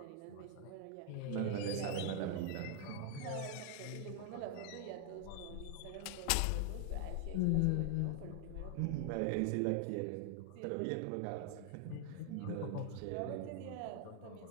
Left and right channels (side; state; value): both; different; correlation 0.00